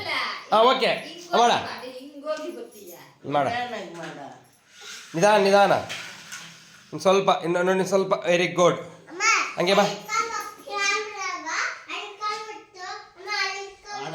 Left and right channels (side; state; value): both; identical; correlation 1.00